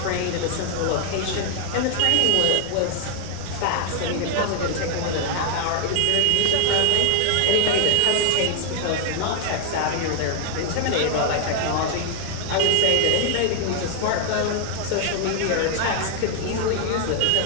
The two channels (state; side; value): different; both; correlation 0.00